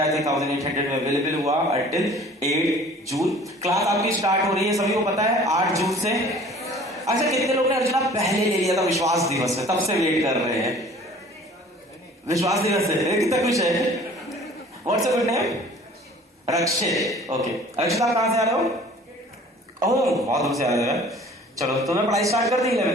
है 3800 में अवेलेबल हुआ until 8 जून। क्लास आपकी स्टार्ट हो रही है, सभी को पता है 8 जून से। अच्छा, कितने लोग ने अर्जुना पहले ले लिया था विश्वास दिवस से, तब से वेट कर रहे हैं? विश्वास दिवस से कितना खुश है? What's your good name? Rakshit. Okay, arjuna कहां से आ रहे हो? ओह, बहुत दूर से आ रहे हैं। चलो, तुम्हें पढ़ाई स्टार्ट कर दी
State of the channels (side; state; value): both; normal; correlation 0.49